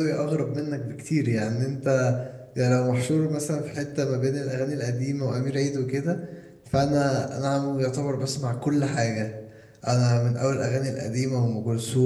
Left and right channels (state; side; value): identical; both; correlation 1.00